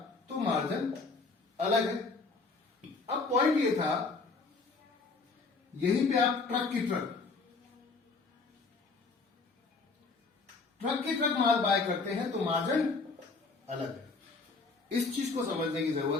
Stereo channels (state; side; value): quieter; right; 4.1 dB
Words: तो मार्जिन अलग है। अब पॉइंट ये था, यहीं पे आप ट्रक की ट्रक माल बाय करते हैं तो मार्जिन अलग है। इस चीज को समझने की